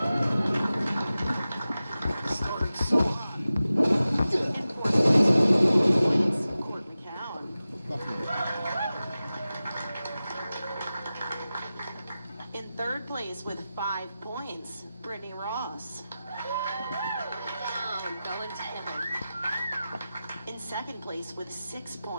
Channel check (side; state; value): both; inverted; correlation -0.94